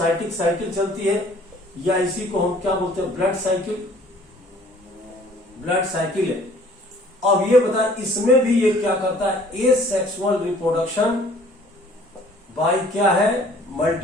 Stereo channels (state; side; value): normal; both; correlation 0.54